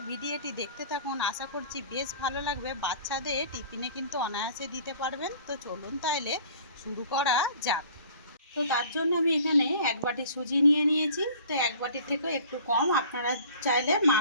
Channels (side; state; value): both; inverted; correlation -0.48